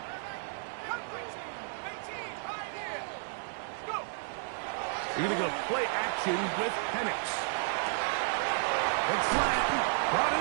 Cougar 19. 18. Right here. Let's go. You're going to go play action with Penix. It's flat, brought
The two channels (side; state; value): left; silent; 56 dB below the other